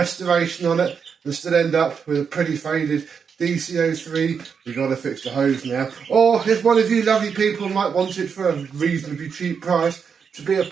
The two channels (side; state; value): left; quieter; 6.4 dB